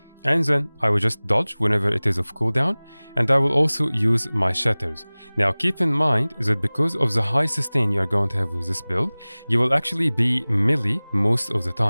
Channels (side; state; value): both; inverted; correlation -1.00